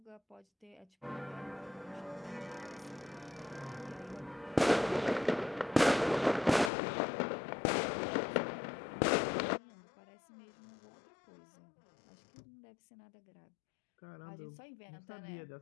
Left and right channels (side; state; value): right; drops out; at 6.7 s